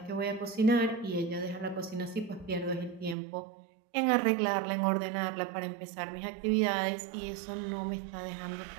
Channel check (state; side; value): drops out; left; at 3.2 s